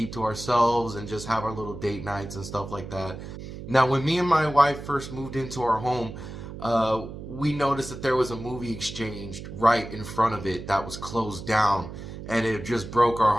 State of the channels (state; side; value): noise; right; hum, 11 dB below the sound